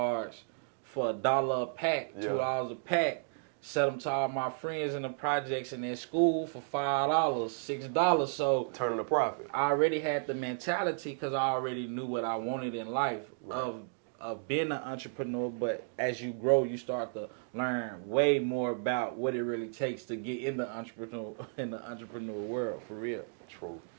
for $1 a pack, $2 a pack. Sell them to all my friends in the projects and at school for $5, $6. So Turning a profit. I already had the mentality because I already knew what I wanted in life of being an entrepreneur. But as you grow, you start to learn way more about what it really takes to get in the entrepreneur world for real. True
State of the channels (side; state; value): left; silent; digital silence